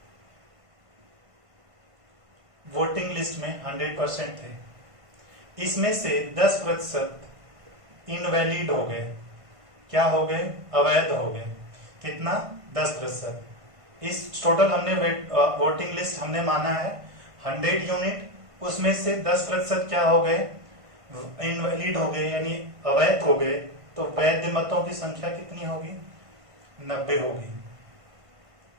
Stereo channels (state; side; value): late; left; 1.5 ms